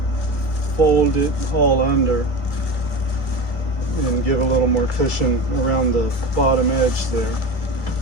fold it all under and give a little more cushion around the bottom edge there.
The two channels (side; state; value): right; late; 2.2 ms